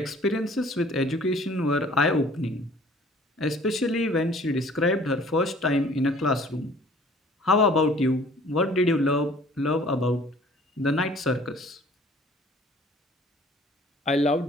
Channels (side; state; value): both; normal; correlation 0.53